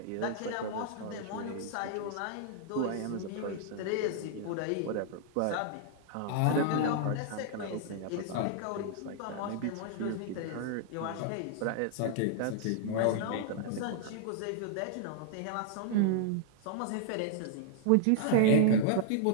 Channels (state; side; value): different; both; correlation -0.01